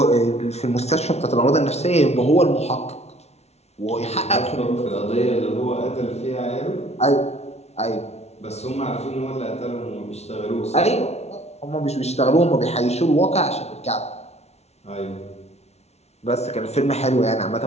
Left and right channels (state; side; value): late; right; 0.31 ms